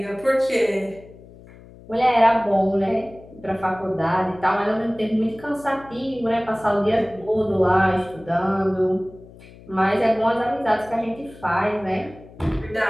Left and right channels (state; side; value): noise; left; hum, 21 dB below the sound